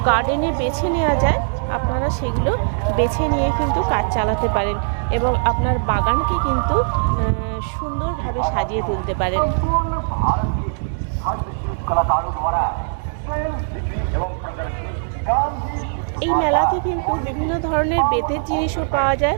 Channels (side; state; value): left; silent; digital silence